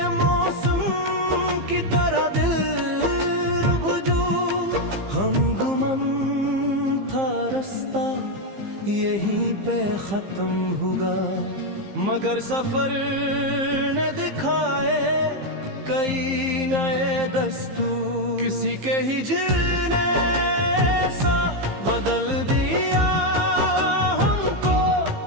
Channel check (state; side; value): late; left; 15 ms